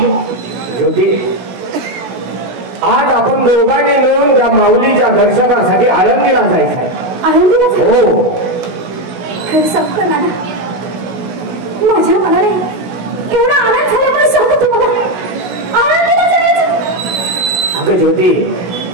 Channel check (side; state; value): left; late; 16 ms